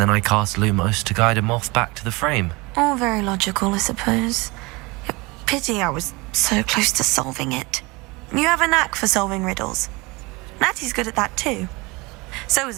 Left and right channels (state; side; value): quieter; left; 24.9 dB